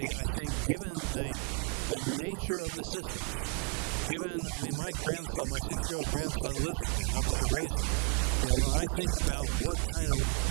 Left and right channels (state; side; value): quieter; left; 37.4 dB